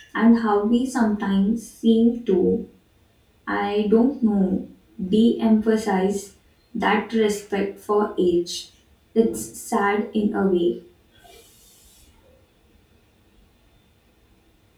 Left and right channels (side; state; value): both; identical; correlation 1.00